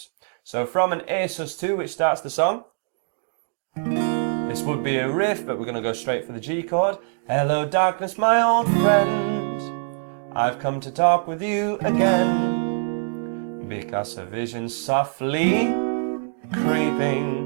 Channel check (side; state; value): left; silent; digital silence